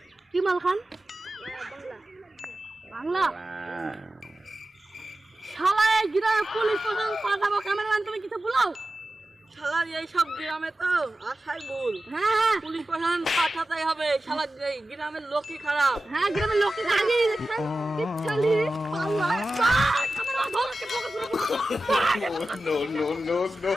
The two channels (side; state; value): both; normal; correlation 0.94